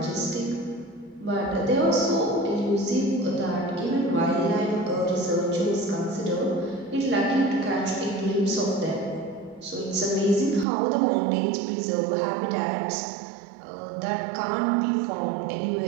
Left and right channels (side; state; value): left; drops out; at 10.7 s